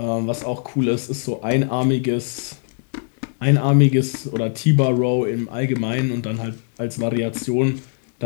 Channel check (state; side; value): silent; right; digital silence